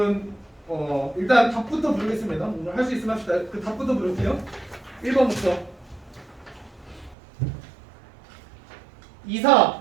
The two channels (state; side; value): drops out; left; at 7.2 s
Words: 일단 답부터 부르겠습니다. 오늘 할 수 있으면 합시다. 그 답부터 부를게요. 1번부터 2,